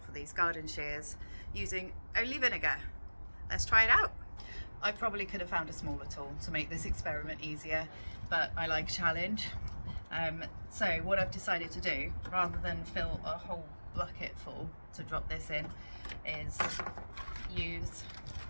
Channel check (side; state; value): both; inverted; correlation -1.00